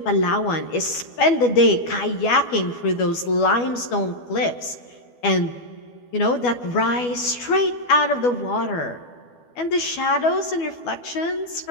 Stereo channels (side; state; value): right; late; 12 ms